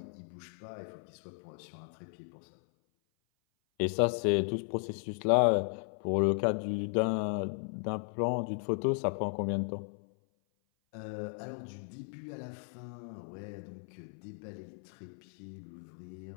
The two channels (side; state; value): right; silent; 54 dB below the other